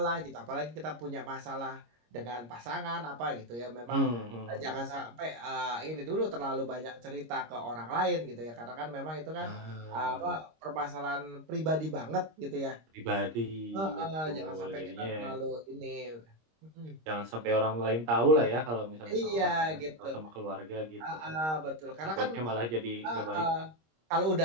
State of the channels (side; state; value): left; late; 26 ms